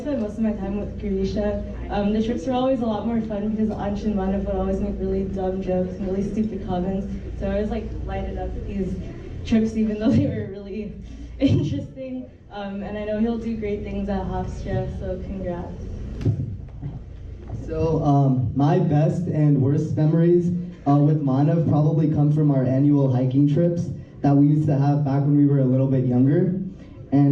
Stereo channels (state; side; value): identical; both; correlation 1.00